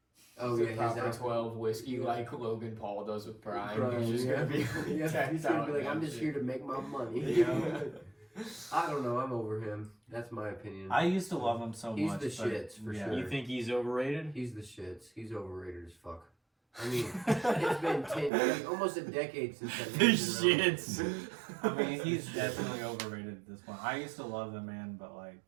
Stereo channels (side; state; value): left; drops out; at 18.3 s